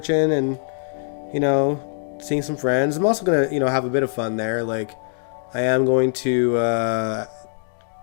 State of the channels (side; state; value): right; silent; digital silence